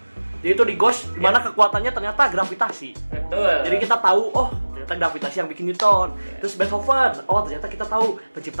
Jadi itu di Ghost, dimana kekuatannya ternyata gravitasi. Betul. Jadi kita tahu, oh ternyata gravitasi yang bikin Newton. Terus Beethoven, oh ternyata kita tahu pencipta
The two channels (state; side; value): inverted; both; correlation -1.00